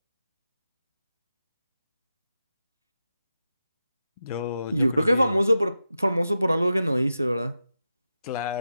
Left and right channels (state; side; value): inverted; both; correlation -0.91